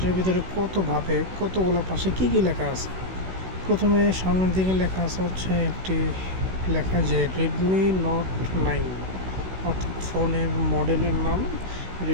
ভিতরে কতভাবে কতগুলো পাশে কী কী লেখা আছে। প্রথমে সামনের দিকে লেখা আছে হচ্ছে একটি লেখা যে Redmi Note 9, অর্থাৎ ফোনের মডেলের নাম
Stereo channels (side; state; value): left; late; 16 ms